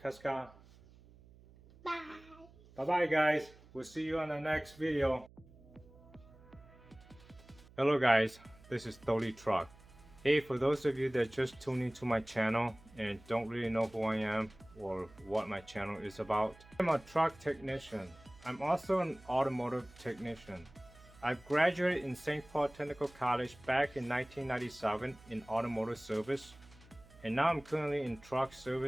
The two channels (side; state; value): right; noise; hum, 23 dB below the sound